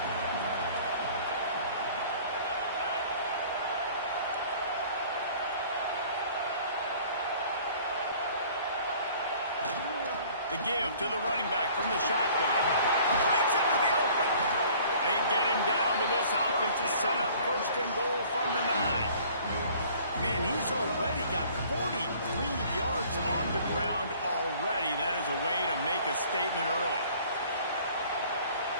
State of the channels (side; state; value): both; inverted; correlation -0.52